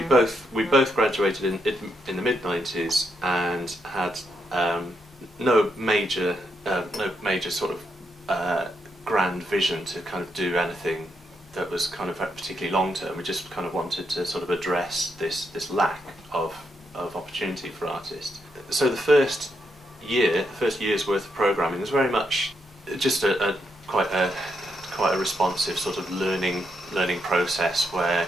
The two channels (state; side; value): normal; both; correlation 0.80